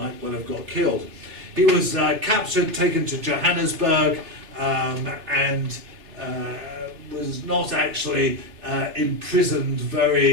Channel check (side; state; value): left; late; 3.3 ms